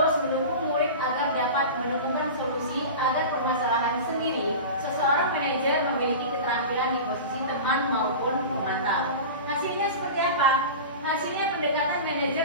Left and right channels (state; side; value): inverted; both; correlation -0.31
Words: mendukung murid agar dapat menemukan solusi agar permasalahan sendiri. Seseorang manajer memiliki keterampilan di posisi teman maupun pemantau. Hasilnya seperti apa? Hasilnya pendekatan manajer